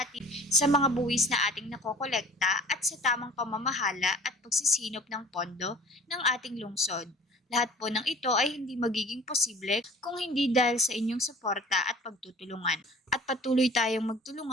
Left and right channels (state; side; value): normal; both; correlation 0.46